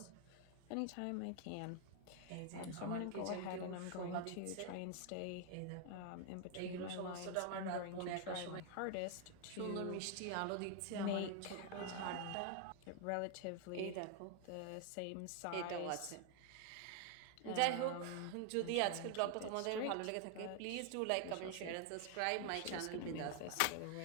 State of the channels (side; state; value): both; different; correlation 0.00